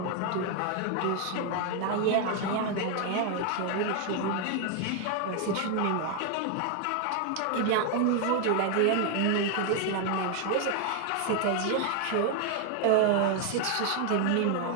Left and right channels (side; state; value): both; different; correlation 0.00